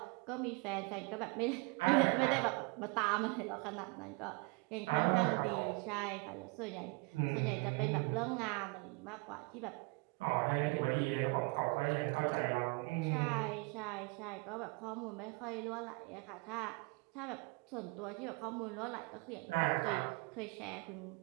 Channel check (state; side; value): quieter; left; 29.0 dB